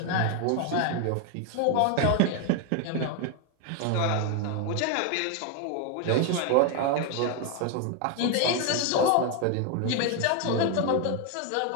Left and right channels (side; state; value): both; different; correlation 0.01